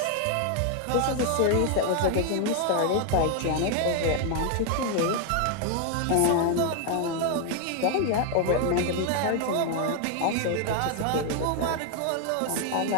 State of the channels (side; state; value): both; different; correlation 0.00